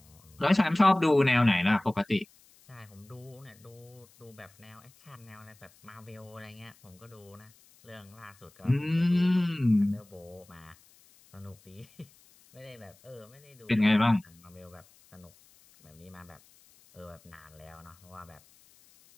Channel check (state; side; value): noise; left; hiss, 28 dB below the sound